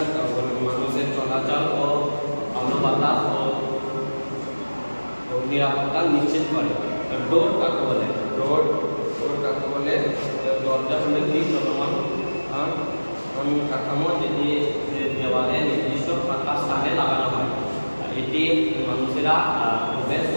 মানুষের চলাচল ও আলো বাতাস ও নিরাপত্তা নিশ্চিত করে। ডোর কাকে বলে? ডোর কাকে বলে? দরজা হলে কি চলমান কাঠামো, যেটি দেওয়ালে নির্দিষ্ট ফাঁকা স্থানে লাগানো হয়। এটি মানুষেরা প্রবেশ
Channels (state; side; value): inverted; both; correlation -1.00